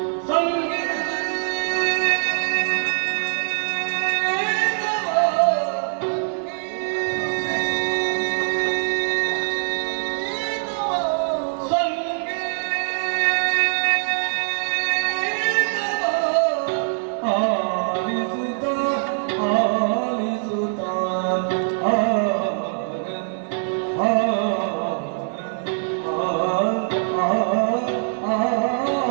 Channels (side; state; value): left; silent; digital silence